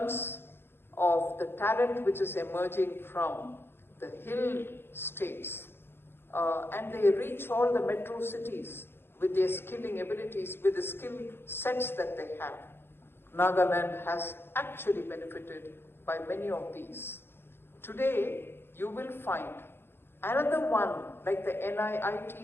of the talent which is emerging from the hill states, and they reach all the metro cities with their skilling abilities, with the skill sets that they have. Nagaland has actually benefited by many of these. Today, you will find another one, like the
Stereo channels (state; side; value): late; right; 0.11 ms